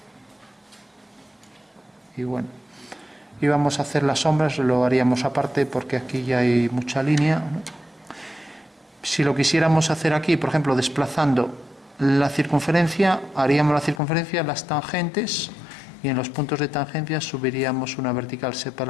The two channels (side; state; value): right; drops out; at 14.0 s